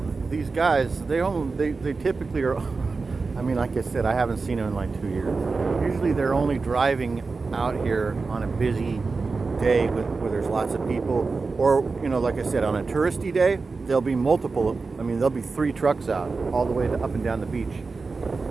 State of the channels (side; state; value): left; quieter; 4.2 dB